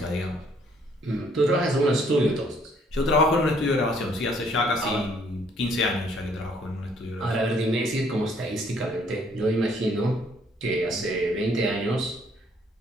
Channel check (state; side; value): normal; both; correlation 0.64